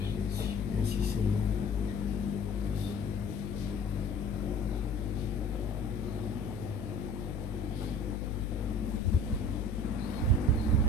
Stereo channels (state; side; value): noise; left; hum, 5 dB below the sound